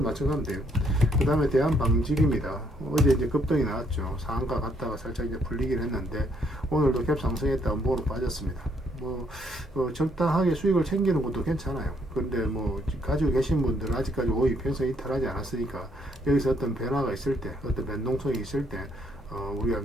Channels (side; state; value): both; normal; correlation 0.70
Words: 맞춰가면 돼요. 그 다음에 대한방직입니다. 어제 이제 급등이 나왔죠. 상한가 갔다가 살짝 이제 풀리긴 했는데 오늘도 갭 상승했다 음보로 빠졌습니다. 적당하게 수익을 챙기는 것도 괜찮아요. 그런데 가지고 계신 분들은 아직까지 5위 평선 이탈하지 않았으니까 여기서 어떤 변화가 있을 때, 어떤 변동성이 있을 때 우리가